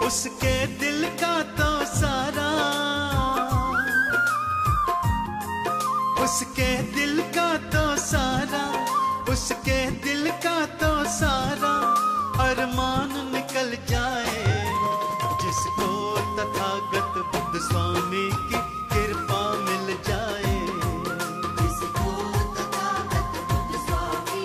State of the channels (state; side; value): identical; both; correlation 1.00